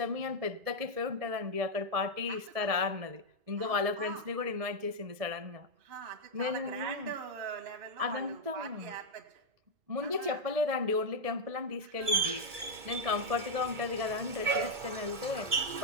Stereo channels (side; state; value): left; late; 2.3 ms